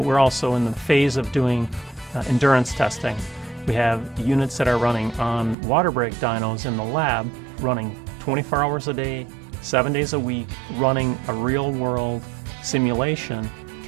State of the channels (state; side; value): drops out; left; at 5.6 s